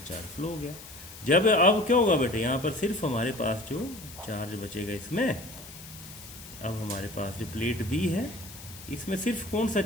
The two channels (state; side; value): noise; left; hiss, 16 dB below the sound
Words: फ्लो हो गया। जब अब क्या होगा बेटे, यहाँ पर सिर्फ हमारे पास जो चार्ज बचेगा इसमें, अब हमारे पास जो प्लेट बी है, इसमें सिर्फ कौन सा